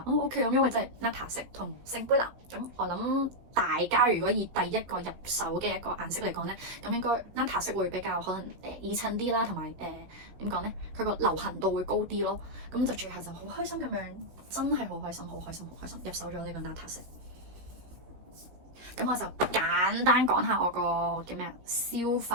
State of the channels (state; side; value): late; left; 16 ms